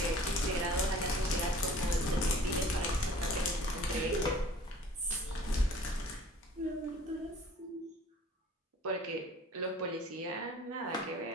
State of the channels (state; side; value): normal; both; correlation 0.49